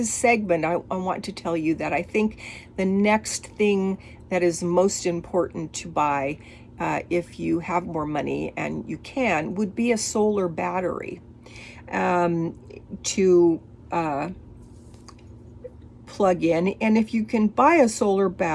segment, I want to tell you that I think the next thing that is most important to buy, if you have more money and you can, would be a solar battery to plug in. And if you can buy a solar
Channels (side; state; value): both; identical; correlation 1.00